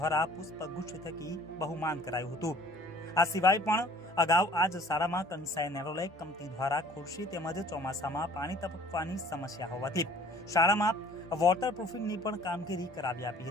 પુષ્પગુચ્છ થકી બહુમાન કરાયું હતું. આ સિવાય પણ અગાઉ આ જ શાળામાં કંસાઈ નેરોલેક કંપની દ્વારા ખુરશી તેમજ ચોમાસામાં પાણી ટપકવાની સમસ્યા હોવાથી શાળામાં વોટરપ્રૂફિંગની પણ કામગીરી કરાવી આપી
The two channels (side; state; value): both; normal; correlation 0.52